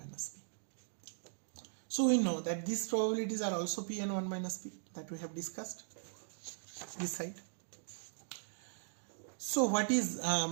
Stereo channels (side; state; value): left; silent; digital silence